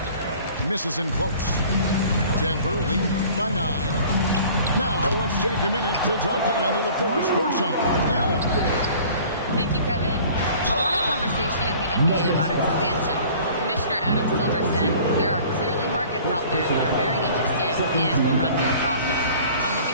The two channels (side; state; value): both; inverted; correlation -0.48